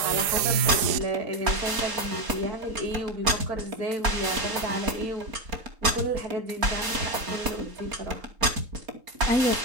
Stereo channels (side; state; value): left; late; 4.3 ms